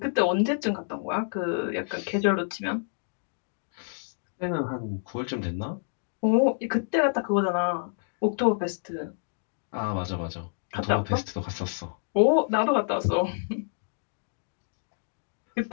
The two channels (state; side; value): silent; right; digital silence